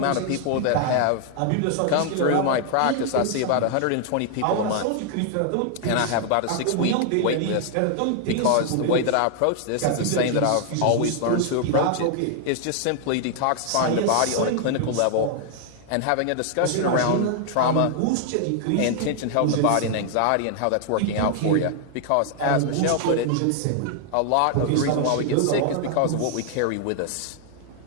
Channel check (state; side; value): different; both; correlation 0.00